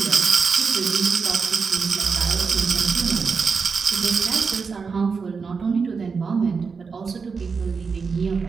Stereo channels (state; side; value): quieter; left; 5.2 dB